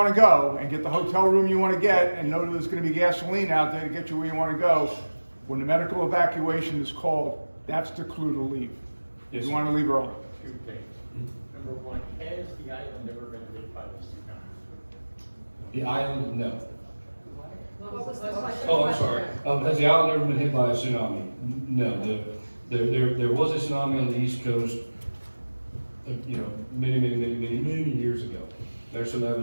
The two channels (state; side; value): inverted; both; correlation -1.00